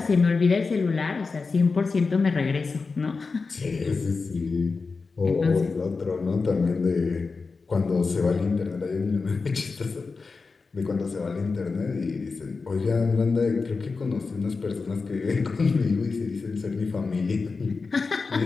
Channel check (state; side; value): quieter; right; 4.4 dB